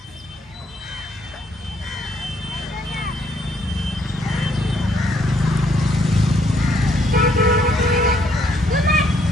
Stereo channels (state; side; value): normal; both; correlation 0.69